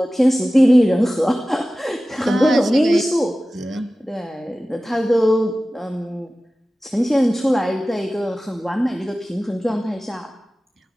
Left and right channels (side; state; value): both; normal; correlation 0.96